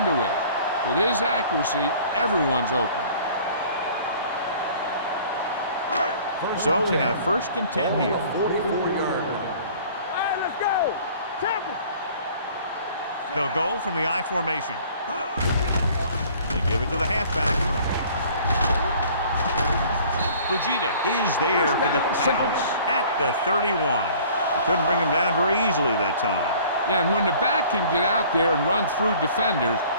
is. With his accuracy, everyone's open. So they have 1st and 10 here. 44-yard line. They'll go from the I formation. They give it to the halfback. Fujita is there for the tackle at the 31. They couldn't bring him down very easily that time. Yeah, and when the back can get out there and run through defenders,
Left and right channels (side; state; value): both; inverted; correlation -0.51